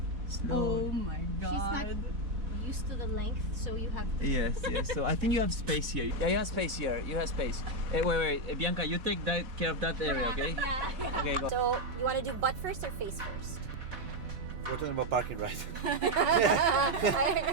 Slow. Oh my god. She's not used to the length, so you have to... Yes. So I think you have space here. Yeah, you have space here. You have space. Wait. Bianca, you take care of that area, okay? Yeah. Okay, go. So, you want to do butt first or face first? We're talking about parking, right? I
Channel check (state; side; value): late; left; 4.1 ms